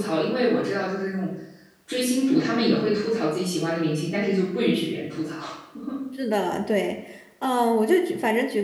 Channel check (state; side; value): identical; both; correlation 1.00